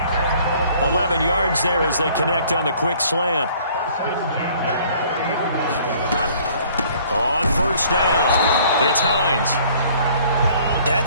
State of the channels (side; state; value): both; inverted; correlation -0.56